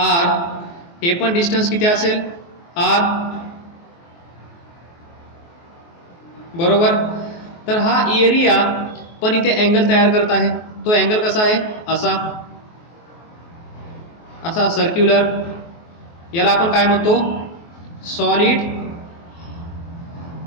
हे पण डिस्टन्स किती असेल? आर. बरोबर. तर हा एरिया पण इथे अँगल तयार करत आहे. तो अँगल कसा आहे? असा सर्क्युलर. याला आपण काय म्हणतो? Solid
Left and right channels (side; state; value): right; late; 23 ms